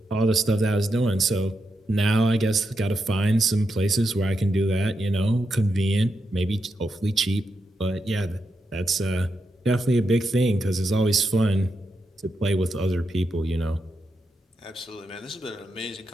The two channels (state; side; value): normal; both; correlation 0.85